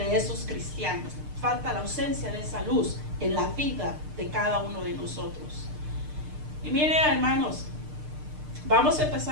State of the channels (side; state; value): left; late; 6.6 ms